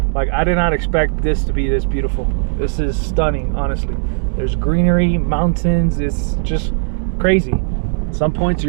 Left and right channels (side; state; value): left; silent; 68 dB below the other